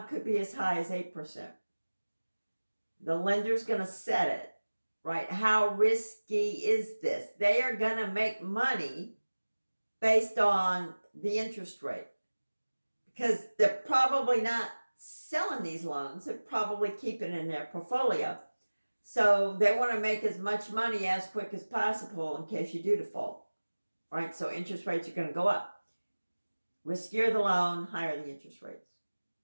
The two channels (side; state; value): both; inverted; correlation -1.00